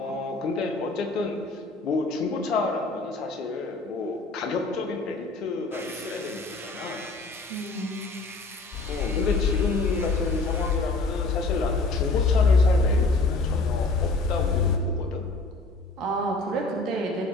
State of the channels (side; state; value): right; quieter; 3.3 dB